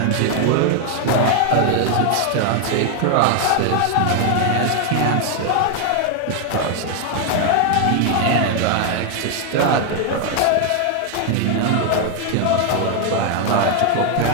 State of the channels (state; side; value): different; both; correlation 0.00